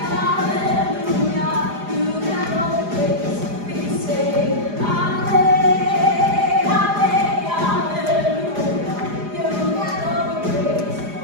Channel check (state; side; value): late; left; 4.9 ms